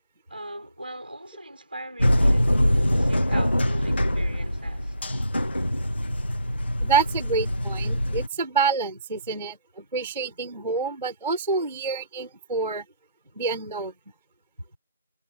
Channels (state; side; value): inverted; both; correlation -0.65